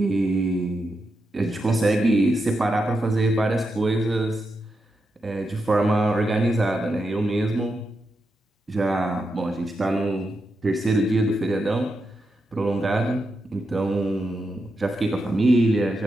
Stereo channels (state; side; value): normal; both; correlation 0.86